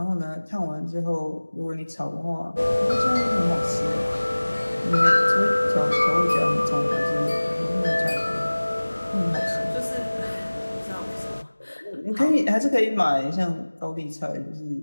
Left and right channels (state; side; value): inverted; both; correlation -1.00